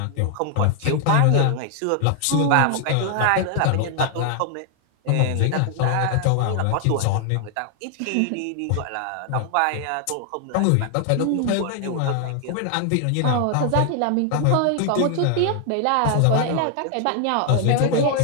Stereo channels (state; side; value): different; both; correlation 0.00